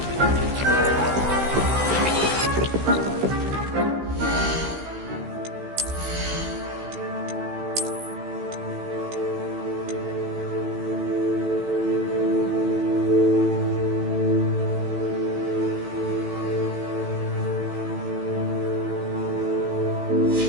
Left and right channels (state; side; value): late; left; 15 ms